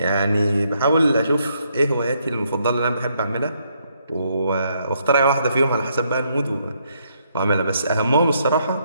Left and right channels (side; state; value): both; inverted; correlation -0.74